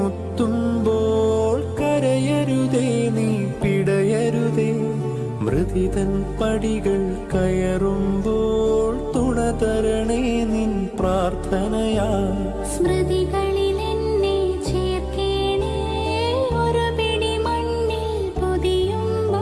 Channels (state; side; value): identical; both; correlation 1.00